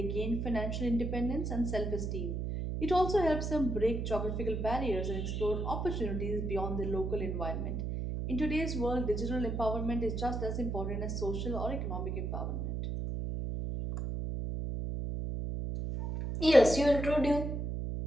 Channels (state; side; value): noise; right; hum, 2 dB below the sound